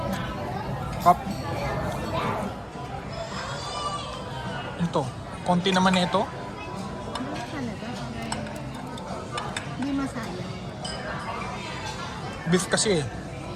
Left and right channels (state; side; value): identical; both; correlation 1.00